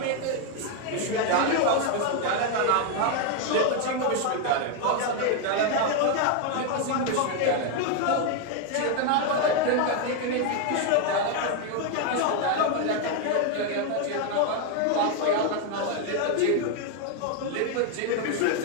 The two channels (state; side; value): different; both; correlation 0.01